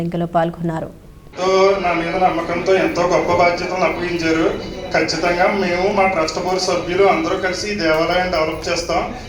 పాల్గొన్నారు. నా మీద నమ్మకంతో ఎంతో గొప్ప బాధ్యతలు అప్పగించారు. ఖచ్చితంగా మేము మా ట్రస్ట్ బోర్డు సభ్యులు అందరూ కలిసి ఈ దేవాలయాన్ని డెవలప్ చేస్తాం.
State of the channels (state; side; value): identical; both; correlation 1.00